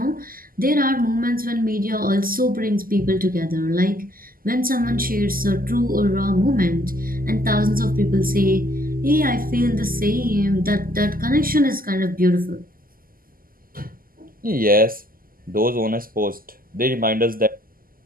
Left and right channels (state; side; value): late; left; 0.42 ms